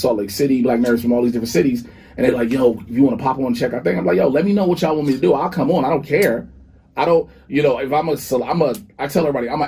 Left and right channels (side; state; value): both; identical; correlation 1.00